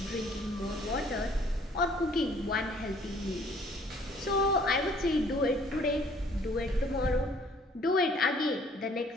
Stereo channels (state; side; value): normal; both; correlation 0.59